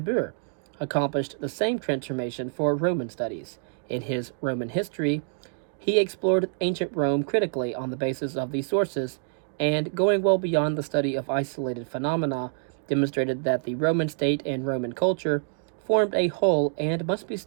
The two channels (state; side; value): silent; left; digital silence